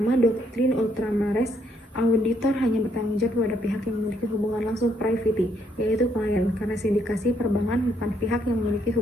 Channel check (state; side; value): normal; both; correlation 0.72